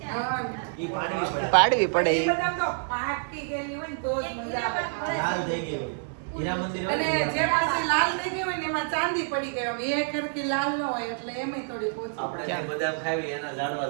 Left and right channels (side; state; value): left; silent; 60 dB below the other